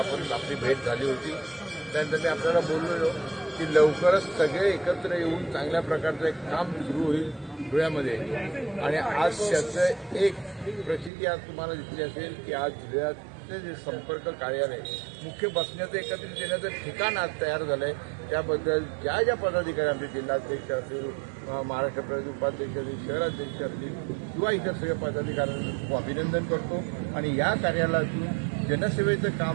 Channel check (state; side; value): drops out; left; at 11.1 s